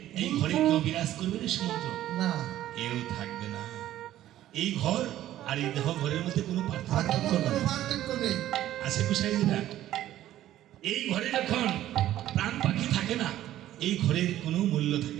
এই ঘরে কেউ বিরাজ করবে না সুমন্ত্র? না কেউ থাকবে না। এই ঘর আর এই দেহ ঘরের মধ্যে কোনো আর পার্থক্য কোনো নেই। পার্থক্য নেই আছে কুসাইদিরা, এই ঘরে যখন প্রাণ পাখি থাকে না, এই ঘরের কোনো মূল্য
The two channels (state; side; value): quieter; left; 13.2 dB